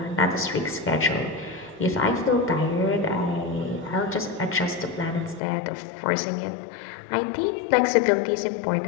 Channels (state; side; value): drops out; right; at 5.4 s